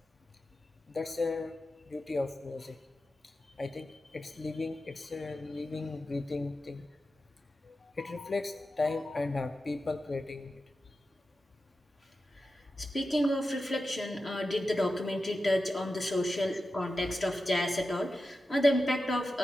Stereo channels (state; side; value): normal; both; correlation 0.92